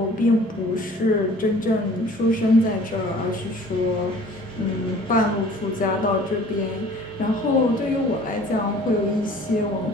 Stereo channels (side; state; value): both; normal; correlation 0.50